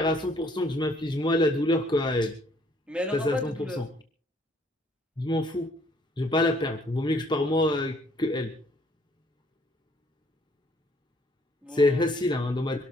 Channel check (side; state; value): both; normal; correlation 0.63